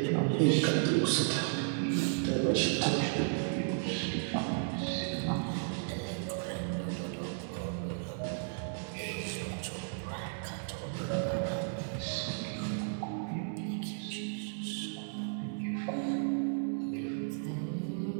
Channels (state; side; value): silent; left; digital silence